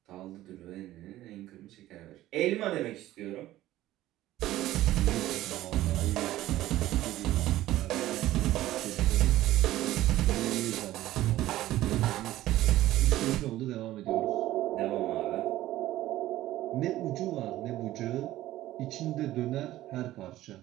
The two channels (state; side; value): quieter; left; 15.1 dB